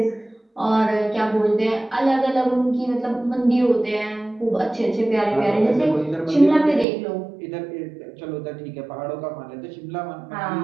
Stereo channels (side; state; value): left; drops out; at 6.9 s